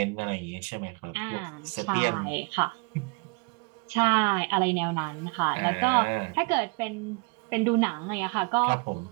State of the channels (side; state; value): left; quieter; 31.0 dB